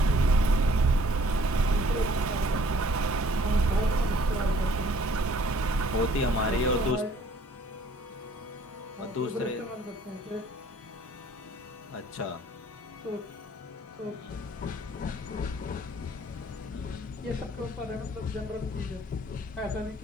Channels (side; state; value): both; normal; correlation 0.58